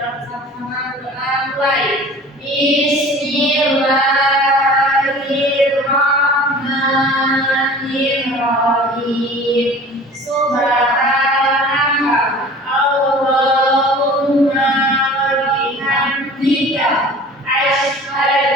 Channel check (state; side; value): normal; both; correlation 0.44